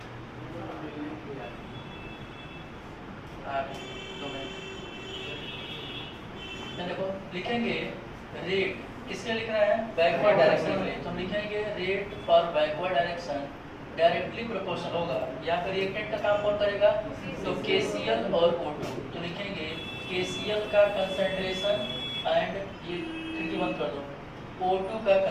देखो, लिखेंगे रेट किसके लिख रहा है, बैकवर्ड डायरेक्शन के लिए। तो हम लिखेंगे rate for backward direction directly proportional होगा, यहाँ पर रिएक्टेंट का काम कौन करेगा, तो KCl और O2। तो लिखेंगे KCl का कंसंट्रेशन एंड ये खिड़की बंद कर दो, O2 का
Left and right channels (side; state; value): both; identical; correlation 1.00